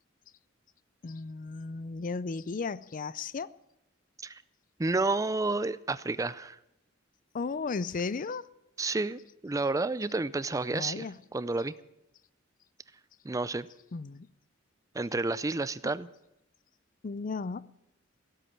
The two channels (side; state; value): both; normal; correlation 0.49